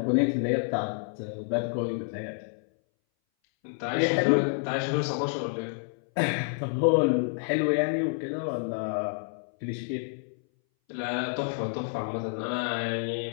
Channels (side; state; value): right; silent; 59 dB below the other